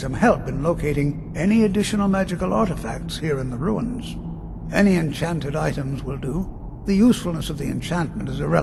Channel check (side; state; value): both; identical; correlation 1.00